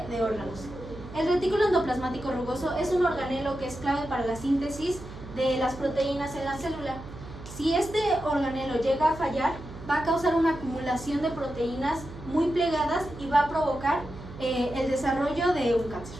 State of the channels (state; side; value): noise; right; hum, 14 dB below the sound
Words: de órganos. El retículo endoplasmático rugoso es un organelo que es clave para la síntesis de las proteínas en la célula. Si este organelo llega a fallar, va a causar una acumulación de proteínas muy plegadas y va a provocar el desarrollo de un